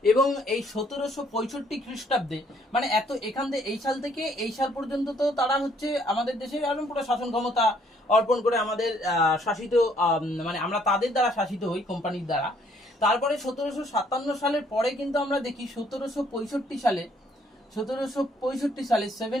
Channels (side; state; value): both; normal; correlation 0.65